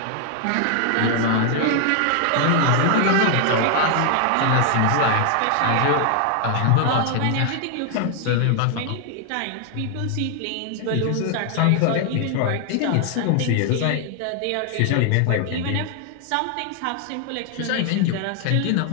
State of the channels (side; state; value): both; different; correlation 0.00